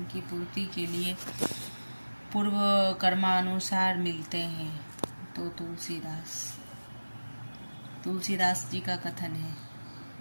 पूर्ति के लिए पूर्व कर्मानुसार मिलते हैं। तो तुलसीदास जी का कथन है।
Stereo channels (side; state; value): both; inverted; correlation -1.00